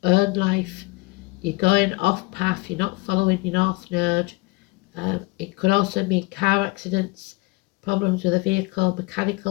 own life. you're going off path, you're not following your north node. It could also mean car accidents, problems with a vehicle,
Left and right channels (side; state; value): right; quieter; 24.1 dB